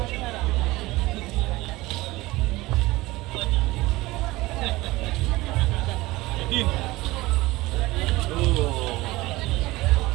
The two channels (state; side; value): quieter; left; 19.7 dB